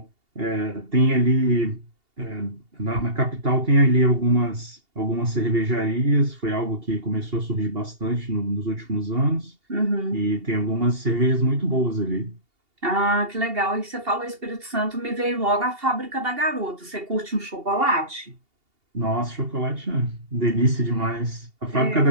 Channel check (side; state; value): left; late; 2.8 ms